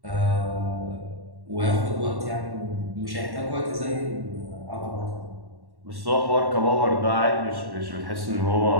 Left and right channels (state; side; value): late; left; 1.1 ms